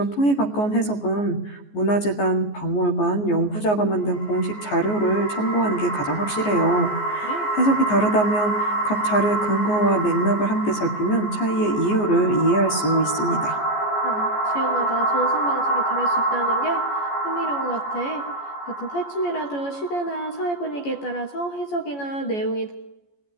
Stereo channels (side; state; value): right; late; 14 ms